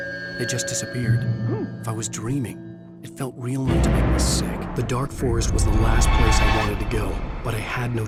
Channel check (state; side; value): identical; both; correlation 1.00